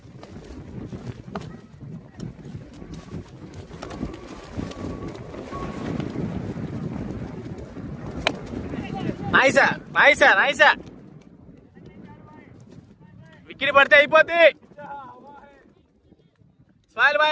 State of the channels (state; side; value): identical; both; correlation 1.00